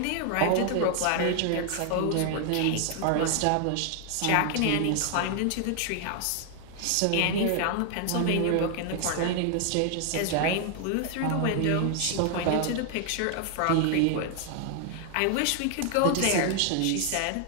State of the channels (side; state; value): both; different; correlation 0.00